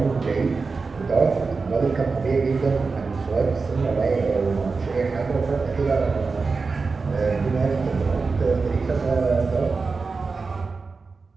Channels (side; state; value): left; quieter; 4.4 dB